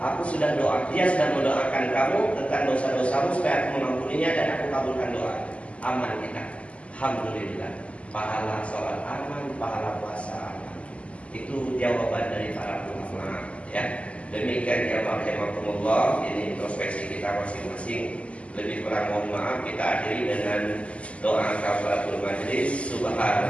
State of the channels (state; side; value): late; right; 0.061 ms